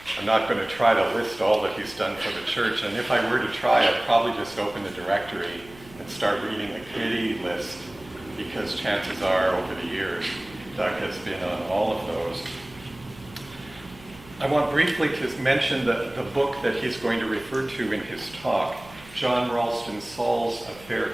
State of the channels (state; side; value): noise; right; hum, 21 dB below the sound